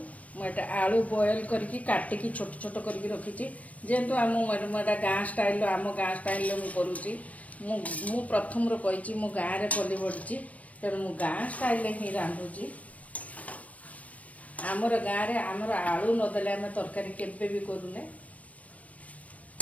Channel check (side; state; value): right; late; 0.067 ms